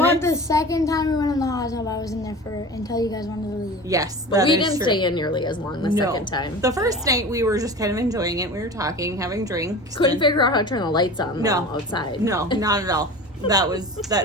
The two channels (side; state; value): both; normal; correlation 0.35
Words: minutes. the second time we went in the hot tub, I was in there until you guys wanted to leave. Yes, But that we is didn't true. stay in nearly as long the second time. The first night we were just kind of enjoying it. We were talking, having drinks. Couldn't and- figure out how to turn the lights on though, No. outside. No, not at all. That